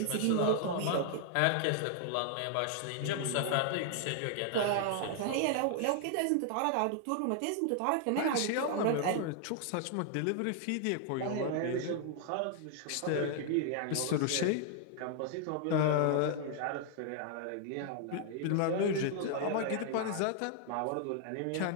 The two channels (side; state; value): both; different; correlation 0.00